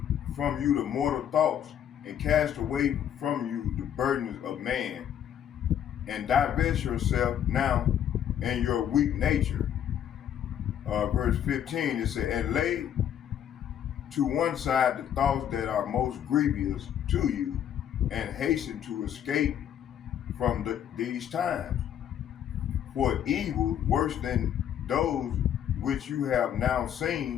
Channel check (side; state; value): right; quieter; 9.8 dB